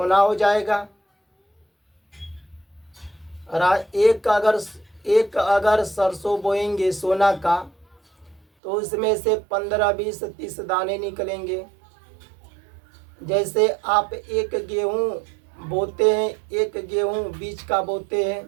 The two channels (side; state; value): left; drops out; at 8.4 s